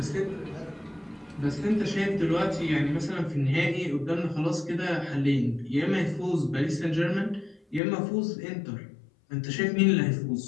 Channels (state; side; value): drops out; right; at 7.8 s